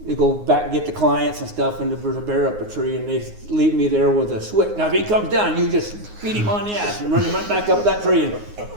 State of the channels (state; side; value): late; left; 9.6 ms